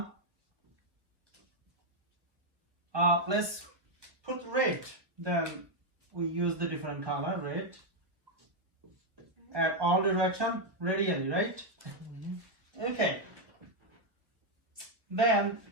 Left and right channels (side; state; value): left; late; 1.2 ms